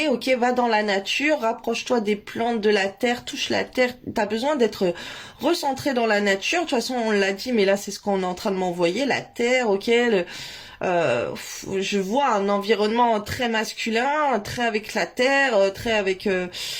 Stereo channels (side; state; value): both; identical; correlation 1.00